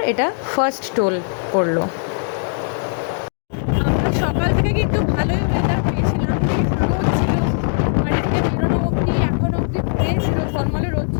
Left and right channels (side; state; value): right; silent; digital silence